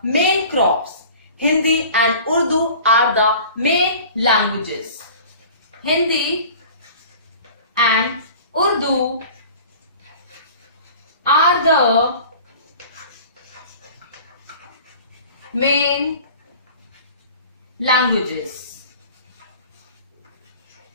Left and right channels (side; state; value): both; inverted; correlation -0.43